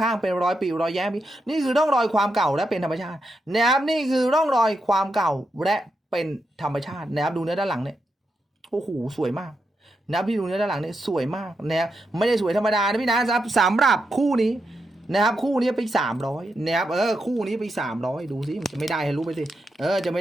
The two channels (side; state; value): both; normal; correlation 0.85